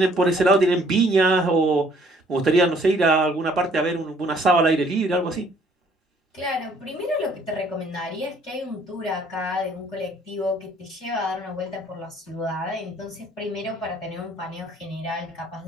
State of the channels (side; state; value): both; normal; correlation 0.61